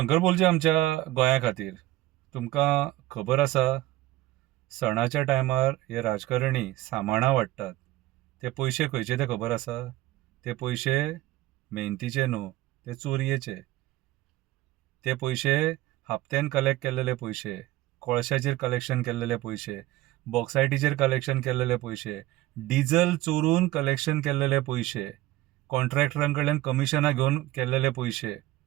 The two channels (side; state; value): left; quieter; 16.9 dB